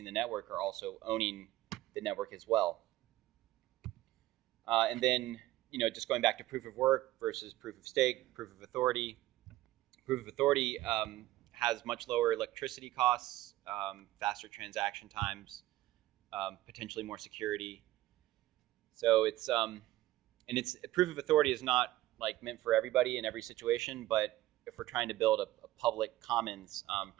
the network are also owning the network as well. And then, you know, just going back to proof of work versus proof of stake, proof of authority. Proof of authority has much lower electricity costs, faster transaction times, potentially more security. So it's proof of authority is not like meant for everybody in every situation, but if we're trying to build a public commons,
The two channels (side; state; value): left; quieter; 16.1 dB